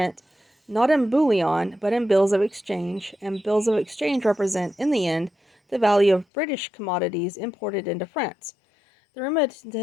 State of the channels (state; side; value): drops out; right; at 6.2 s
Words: not in bullion, but in bills of exchange, and bills of exchange represent, in the end, the value of British commodities imported into France. The